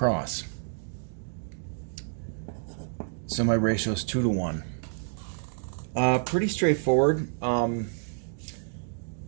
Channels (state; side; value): silent; left; digital silence